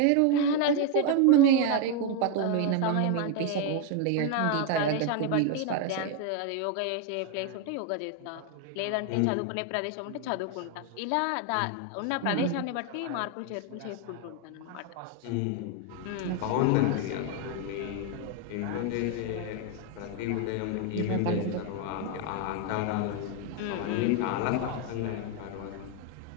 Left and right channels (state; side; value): different; both; correlation 0.01